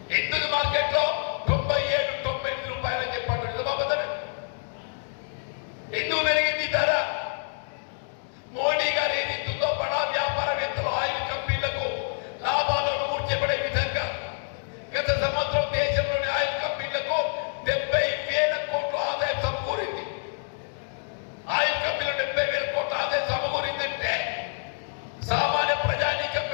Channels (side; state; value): right; silent; digital silence